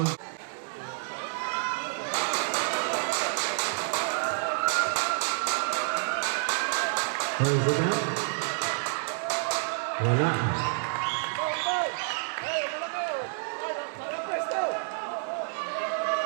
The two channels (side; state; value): left; silent; 59 dB below the other